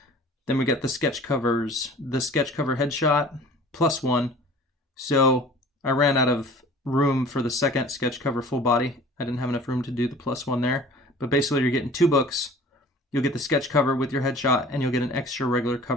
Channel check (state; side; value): normal; both; correlation 0.46